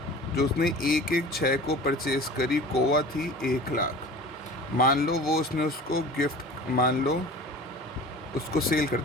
जो उसने 1/6 को परचेज करी, कोवा थी 1 लाख। मान लो वो उसने उसको गिफ्ट, मान लो उसको सेल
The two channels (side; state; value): both; normal; correlation 0.39